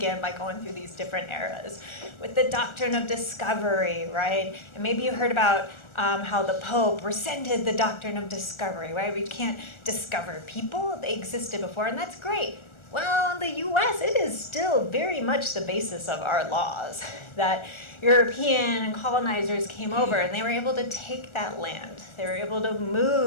by going through these different eras with the doctrine of discovery, right? And maybe you heard about how the Pope rescinded the doctrine of discovery, right? We can't discover people, they existed before, and that's great. Well, in the US, it is still very much the basis of our laws, that European and colonizers came over and they were able to take that land. They were able to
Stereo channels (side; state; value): right; late; 1.4 ms